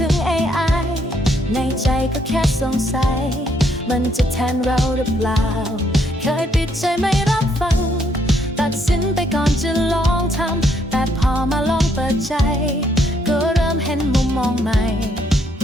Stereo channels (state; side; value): normal; both; correlation 0.71